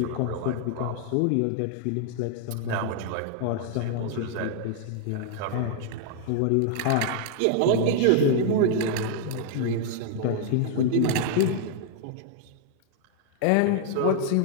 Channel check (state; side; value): different; both; correlation 0.00